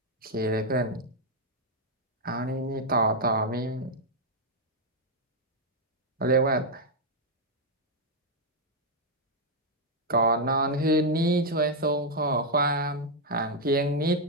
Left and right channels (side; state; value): both; normal; correlation -0.01